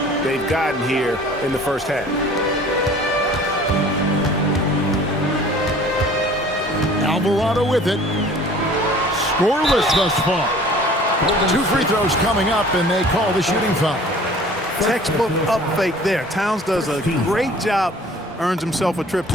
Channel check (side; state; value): both; normal; correlation 0.48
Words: they've gotten here in the first half. Alvarado with it. Scoreless thus far. 2 free throws coming up, and they call the shooting foul. Textbook up fake there. Towns does a great job, earns himself a trip